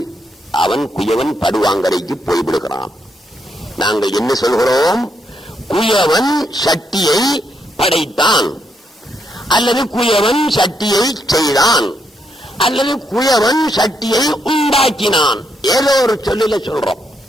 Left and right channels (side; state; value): both; normal; correlation 0.78